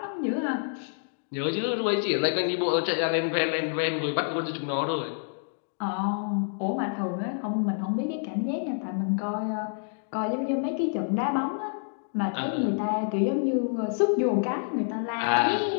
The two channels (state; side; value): silent; right; digital silence